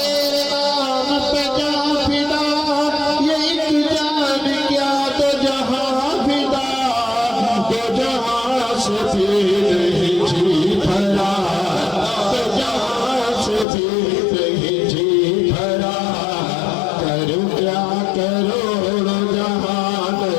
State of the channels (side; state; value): right; drops out; at 13.7 s